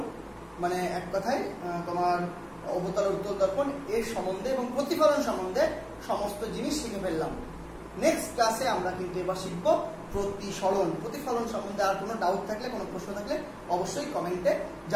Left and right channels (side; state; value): both; identical; correlation 1.00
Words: মানে এক কথায় তোমার অবতল উত্তল দর্পণ এর সম্বন্ধে এবং প্রতিফলন সম্বন্ধে সমস্ত জিনিস শিখে ফেললাম। নেক্সট ক্লাসে আমরা কিন্তু এবার শিখবো প্রতিসরণ, প্রতিফলন সম্বন্ধে। আর কোনো ডাউট থাকলে, কোনো প্রশ্ন থাকলে অবশ্যই কমেন্টে